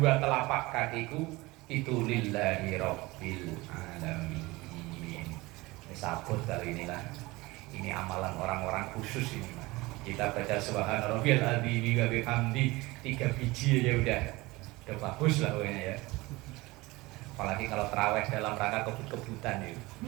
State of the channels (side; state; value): left; quieter; 21.6 dB